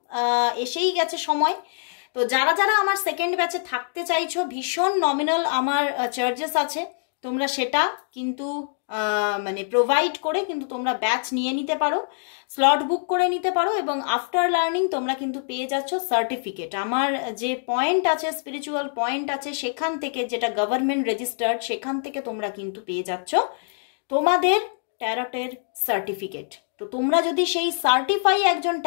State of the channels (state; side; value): silent; right; digital silence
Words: এসেই গেছে সময়। তো যারা যারা আমার সেকেন্ড ব্যাচে থাকতে চাইছো, ভীষণ নমিনাল আমার চার্জেস আছে, তোমরা সেটা কিন্তু মানে প্রোভাইড করে কিন্তু তোমরা ব্যাচ নিয়ে নিতে পারো, স্লট বুক করে নিতে পারো, এবং আফটার লার্নিং তোমরা কিন্তু পেয়ে যাচ্ছ সার্টিফিকেট। আমার যে পয়েন্ট আছে, স্পিরিচুয়াল পয়েন্ট আছে, সেখান থেকে, যেটা গভর্নমেন্ট রেজিস্টার্ড, সেখান থেকে তোমরা কিন্তু পেয়ে যাচ্ছ তোমাদের ট্যারটের সার্টিফিকেট। তো তোমরা যদি সেই সার্টিফাই একজন